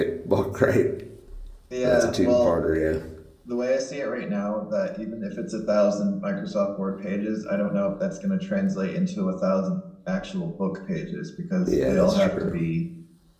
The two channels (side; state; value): both; identical; correlation 1.00